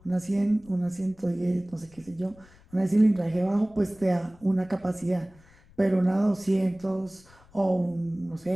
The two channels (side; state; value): left; noise; rumble, 26 dB below the sound